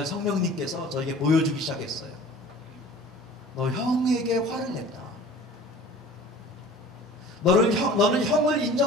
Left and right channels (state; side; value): normal; both; correlation 0.44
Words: 성령님께서 저에게 보여주기 시작했어요. 너 형에게 화를 냈다. 너는 형을